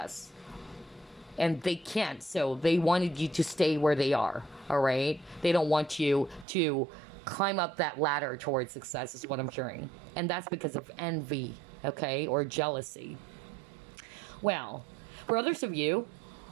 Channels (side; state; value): left; drops out; at 6.5 s